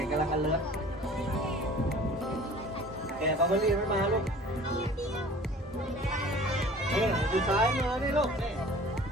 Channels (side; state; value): both; normal; correlation 0.46